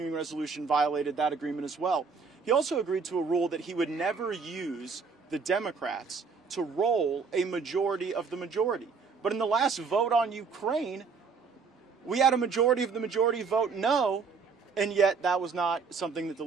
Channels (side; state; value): left; quieter; 5.2 dB